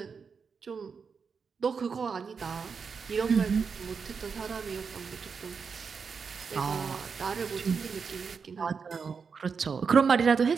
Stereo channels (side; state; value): left; quieter; 5.7 dB